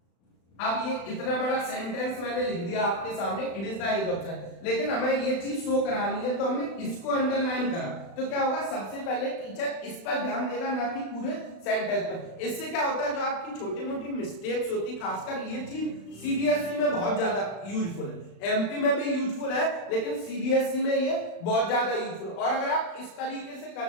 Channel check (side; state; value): right; late; 36 ms